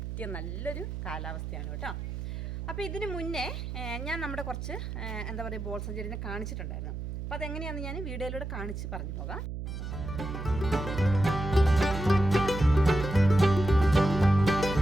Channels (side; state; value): right; noise; hum, 6 dB below the sound